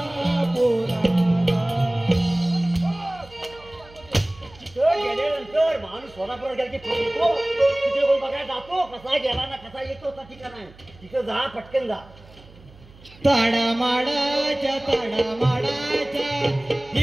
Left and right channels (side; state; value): right; noise; hum, 23 dB below the sound